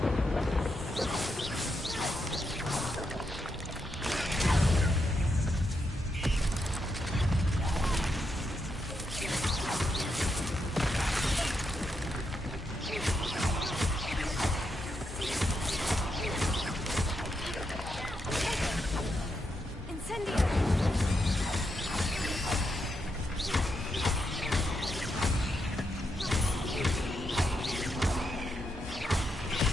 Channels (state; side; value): normal; both; correlation 0.82